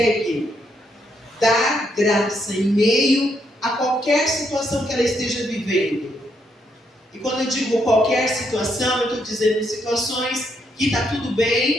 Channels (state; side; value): normal; both; correlation 0.76